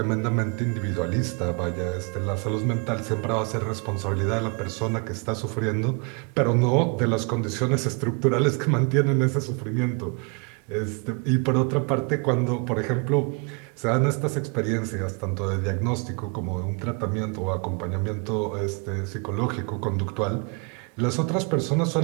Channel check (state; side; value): quieter; left; 34.3 dB